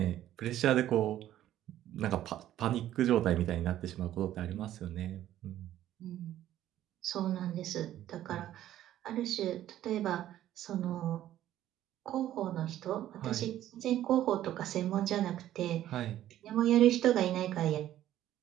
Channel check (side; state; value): left; quieter; 12.7 dB